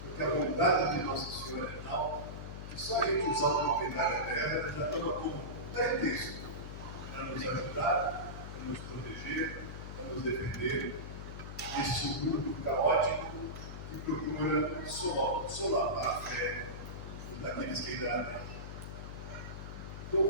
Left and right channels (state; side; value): noise; left; hum, 9 dB below the sound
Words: Porque a bondade de Nossa Senhora é tal que só a gente usar uma medalha dela já toma como pretexto para nos ajudar, para nos proteger, para nos defender deste mundo caótico que procura solapar a fé daqueles que ainda há.